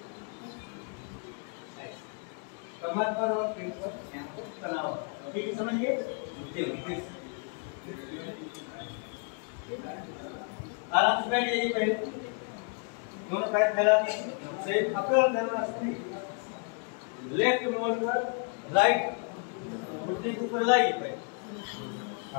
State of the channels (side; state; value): right; quieter; 38.7 dB